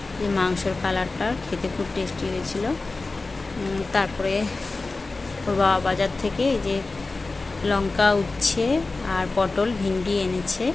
যে মাংসর কালারটা খেতে খুব টেস্টি হয়েছিল। তারপরে ওর বাবা বাজার থেকে এই যে লঙ্কা, উচ্ছে আর পটল, ভিন্ডি এনেছে।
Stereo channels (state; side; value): quieter; right; 3.5 dB